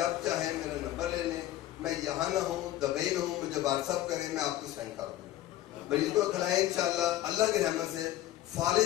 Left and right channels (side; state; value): right; quieter; 14.1 dB